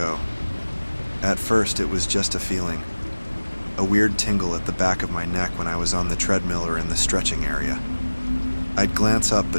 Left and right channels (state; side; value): inverted; both; correlation -1.00